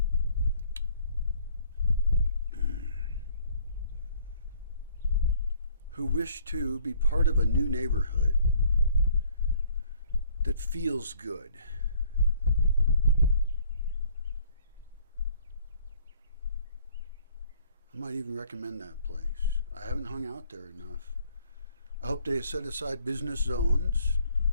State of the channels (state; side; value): inverted; both; correlation -0.60